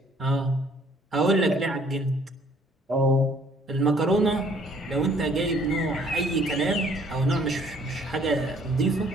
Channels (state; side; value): normal; both; correlation 0.60